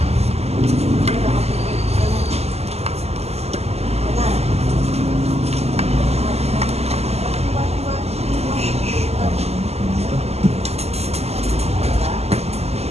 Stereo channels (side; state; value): left; late; 0.30 ms